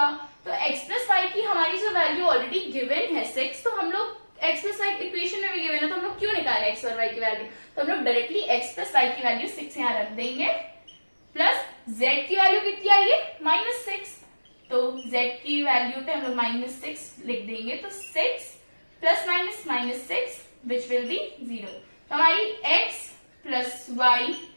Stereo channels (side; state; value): both; inverted; correlation -1.00